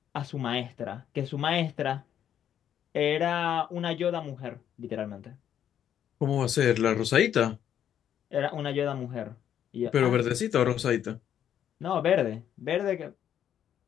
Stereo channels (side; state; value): right; quieter; 9.8 dB